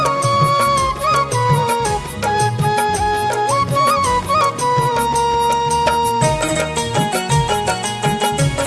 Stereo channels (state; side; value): identical; both; correlation 1.00